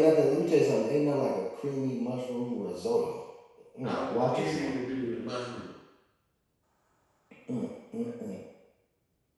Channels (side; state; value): both; identical; correlation 1.00